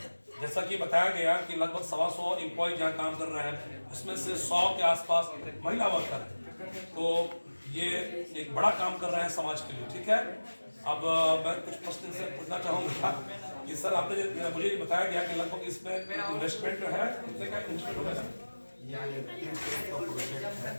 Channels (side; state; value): both; inverted; correlation -1.00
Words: जैसा कि बताया गया कि लगभग 125 एम्प्लॉय जहाँ काम कर रहे हैं, उसमें से 100 के आसपास महिला वर्कर हैं। तो ये एक बड़ा काम कर रहे हैं समाज के लिए। ठीक है, अब मैं कुछ प्रश्न से पूछना चाहूँगा कि सर आपने मुझे ये बताया गया कि लगभग इसमें इन्वेस्टमेंट जो है कितने का इन्वेस्टमेंट होगा?